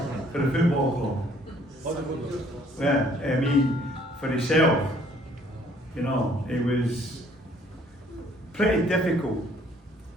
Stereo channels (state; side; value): normal; both; correlation 0.61